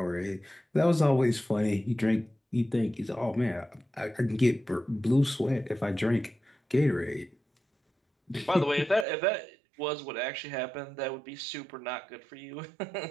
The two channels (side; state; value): left; drops out; at 9.1 s